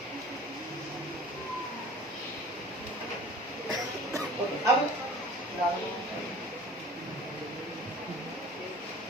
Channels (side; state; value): both; normal; correlation 0.45